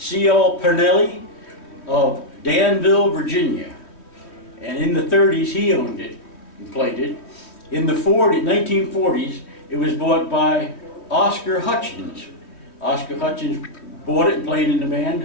Pernelli of Danville, Virginia. And in the 30s, he owned it and played it. In the 1940s, it was bought by Oscar Hutchins. Oscar Hutchins bought it and played in the band,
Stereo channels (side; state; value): right; late; 3.1 ms